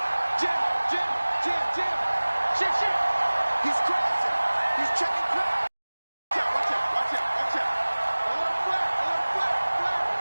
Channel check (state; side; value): inverted; both; correlation -1.00